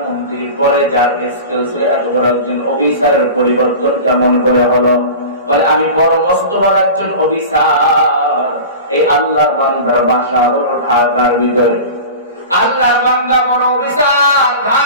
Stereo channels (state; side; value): inverted; both; correlation -0.33